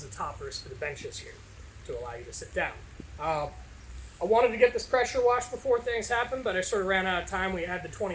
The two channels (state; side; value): identical; both; correlation 1.00